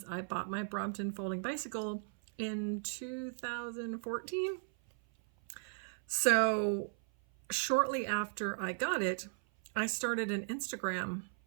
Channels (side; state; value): left; silent; 53 dB below the other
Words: I bought my Brompton folding bicycle in 2014. So shortly after I got it, I started an Instagram